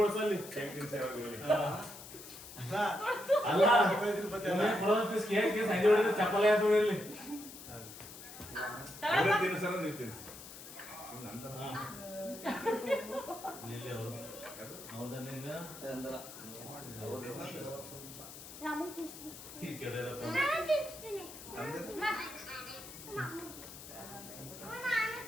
ಹೊಡ್ಸಲ್ಲಿ ಅಲ್ಲ ಕುಡೋ ಪೀಸ್ ಕೇಕ್ ಸಂಜೆ ಹೊಡಿದ್ರೆ ಚಪ್ಪಲಿ ಆಯ್ತು ಇಲ್ಲಿ ತಿನ್ಸಲ್ಲ ನೀವು ತಿನ್ಸಿ ನಂತರ ಇಲ್ಲಿ ಅವರು ಹೌದಾ ನಿಂಗ ರಾಮನ್ ತಿನ್ಸ್ತೀನಿ. ಈ ಕೆಡರಪ್ಪ ನಾನು ತಿನ್ಸ್ತೀನಿ. ನಾನು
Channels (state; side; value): noise; left; hiss, 14 dB below the sound